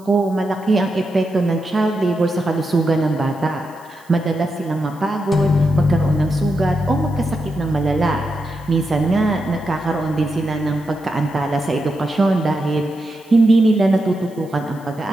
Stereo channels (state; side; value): noise; right; hiss, 28 dB below the sound